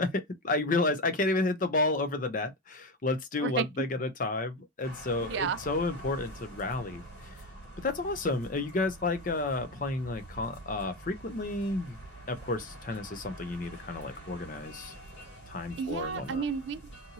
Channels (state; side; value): normal; both; correlation 0.18